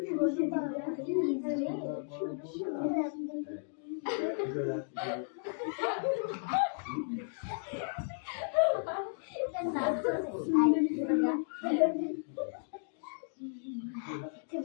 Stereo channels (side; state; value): right; silent; digital silence